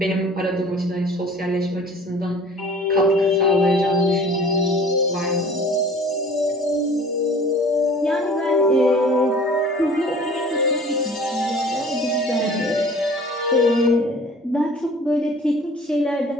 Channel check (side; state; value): both; normal; correlation 0.48